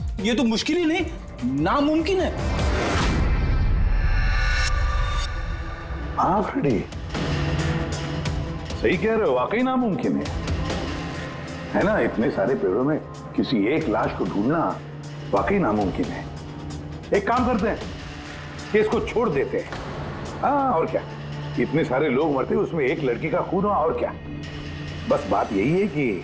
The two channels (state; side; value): identical; both; correlation 1.00